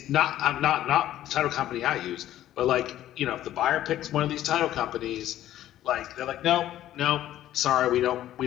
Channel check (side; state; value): right; quieter; 13.0 dB